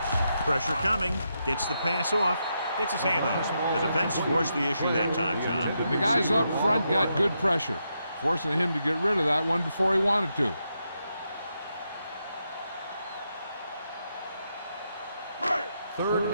Pressure coming. Gets the pass off. Gets his hand on it. The defense forced the issue that time, John. The guys up front got good pressure, forcing him to get rid of that one before he wanted to. Third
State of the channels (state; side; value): inverted; both; correlation -0.83